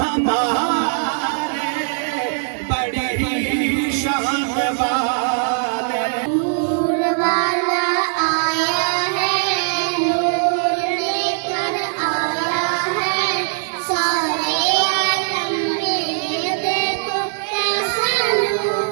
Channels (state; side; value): silent; left; 66 dB below the other